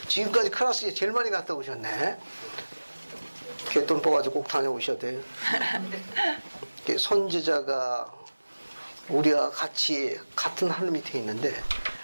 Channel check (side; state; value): both; inverted; correlation -1.00